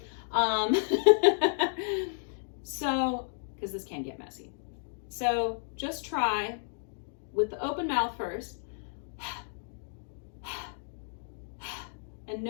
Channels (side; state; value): right; silent; digital silence